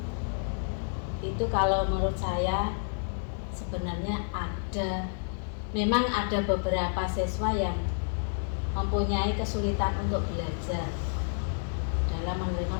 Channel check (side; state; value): right; silent; 56 dB below the other